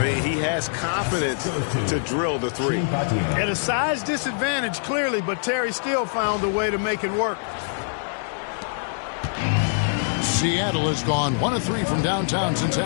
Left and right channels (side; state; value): right; silent; digital silence